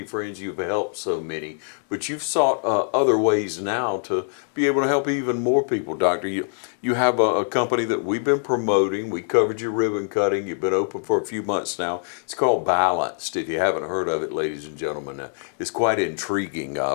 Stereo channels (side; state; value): right; silent; digital silence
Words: friends, you've helped so many, but you've sought other ways now to be able to help even more people, Doctor. You have a company that we've been promoting. We covered your ribbon cutting. You've been open for a few months now. It's called Balanced. If you haven't heard of it, ladies and gentlemen, it's quite intriguing.